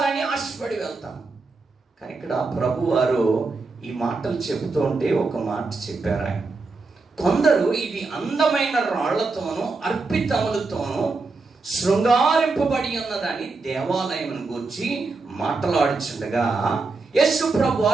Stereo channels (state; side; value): quieter; left; 3.9 dB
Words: ఆశపడి వెళ్తాం. కానీ ఇక్కడ ప్రభు వారు ఈ మాటలు చెబుతూ ఉంటే ఒక మాట చెప్పారు ఆయన. కొందరు ఇది అందమైన రాళ్లతోనూ అర్పితములతోనూ శృంగారింపబడి ఉన్నదని దేవాలయం గురించి మాట్లాడుచుండగా యేసు ప్రభు